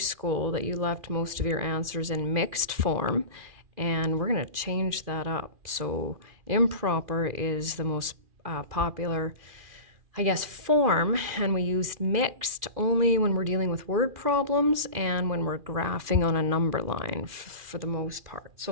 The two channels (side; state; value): left; late; 2.4 ms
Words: that you left most of your answers in mixed form, and we're going to change that up. So improper is the most popular, I guess, form, and we used mixed only when we're dealing with word problems and when we're graphing on a number line for the most part.